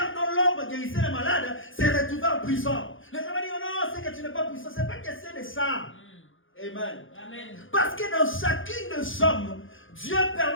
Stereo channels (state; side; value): late; right; 0.58 ms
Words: dont l'ombre guérissait les malades s'est retrouvé en prison. Les gens vont dire, oh non, c'est que tu n'es pas puissant. Ce n'est pas question de ça. Amen. Amen. Parce que dans chacune de sommes, Dieu